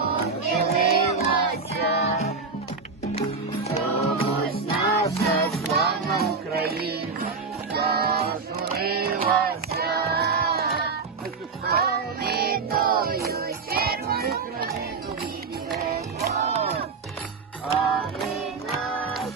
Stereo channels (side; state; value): left; quieter; 4.7 dB